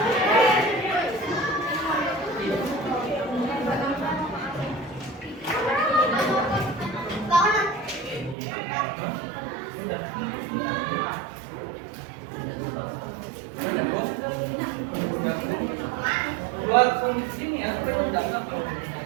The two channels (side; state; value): left; drops out; at 8.3 s